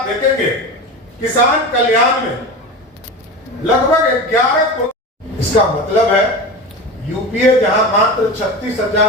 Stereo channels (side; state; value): both; normal; correlation 0.27